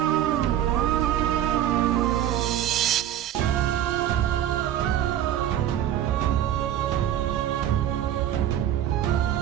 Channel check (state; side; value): quieter; left; 11.5 dB